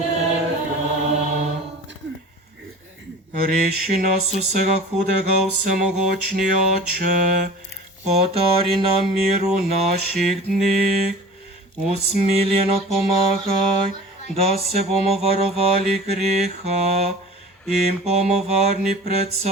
Reši nas vsega hudega, vsemogočni Oče, podari nam mir v naših dneh, usmiljeno pomagaj, da se bomo varovali greha in bomo varni pred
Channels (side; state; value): both; normal; correlation 0.40